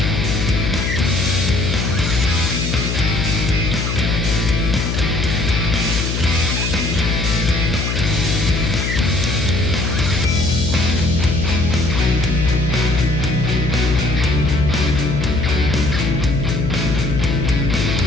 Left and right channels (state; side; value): noise; left; hum, 1 dB below the sound